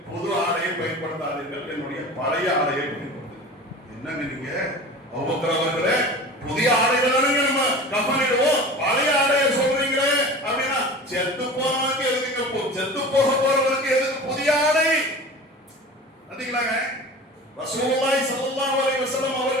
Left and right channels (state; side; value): normal; both; correlation 0.36